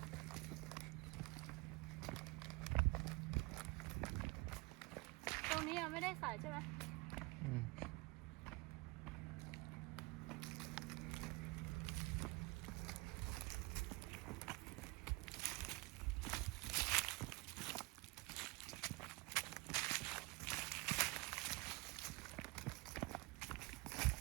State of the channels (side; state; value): left; quieter; 24.5 dB